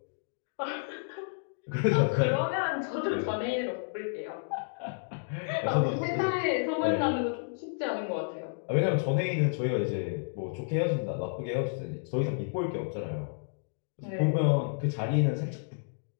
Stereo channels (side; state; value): right; silent; digital silence